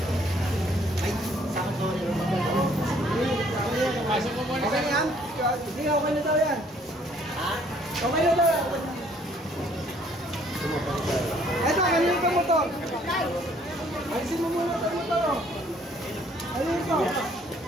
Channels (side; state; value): both; normal; correlation 0.62